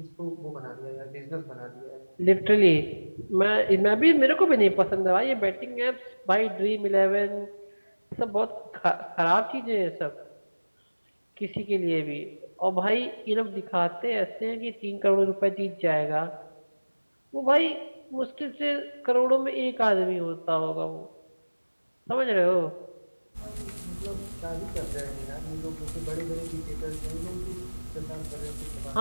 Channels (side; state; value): both; inverted; correlation -1.00